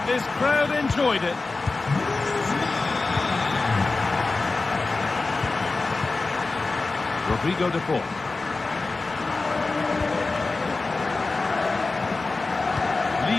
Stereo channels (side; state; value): right; quieter; 3.6 dB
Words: this crowd enjoyed it? Rodrigo de Paul.